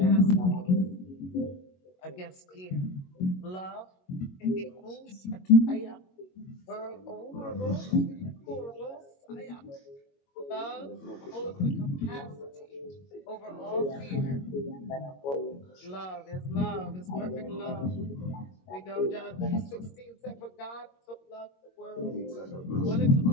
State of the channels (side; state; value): right; late; 22 ms